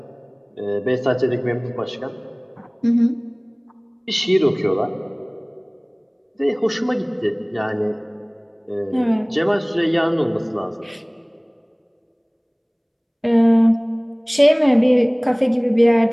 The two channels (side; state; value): both; identical; correlation 1.00